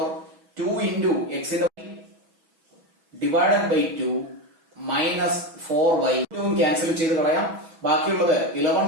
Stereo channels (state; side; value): late; left; 6.1 ms